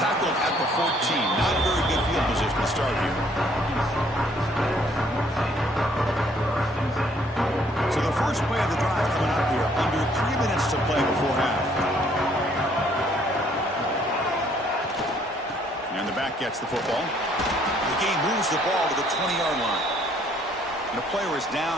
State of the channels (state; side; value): normal; both; correlation 0.64